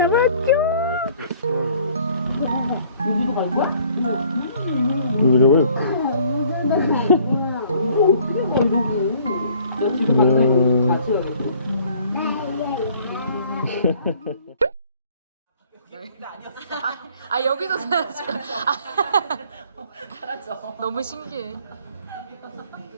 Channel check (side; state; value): both; inverted; correlation -0.57